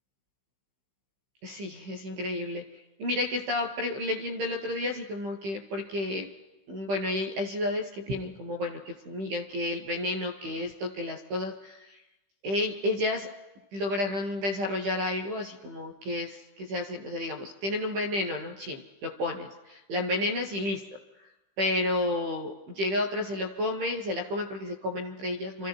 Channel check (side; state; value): left; late; 15 ms